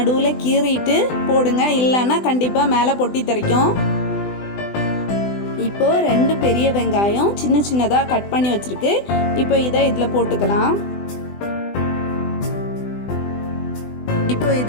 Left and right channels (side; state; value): right; late; 20 ms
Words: கீறிட்டு போடுங்க, இல்லைன்னா கண்டிப்பாக மேலே பொட்டி தெறிக்கும். இப்போது 2 பெரிய வெங்காயம் சின்னதாக கட் பண்ணி வச்சுருக்கு. இப்போ இதை இதில் போட்டுக்கலாம். இப்போ